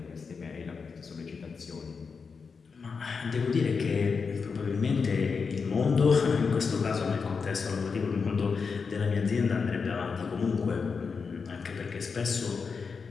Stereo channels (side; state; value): right; quieter; 5.3 dB